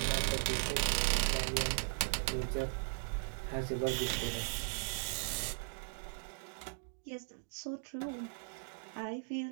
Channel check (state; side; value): silent; left; digital silence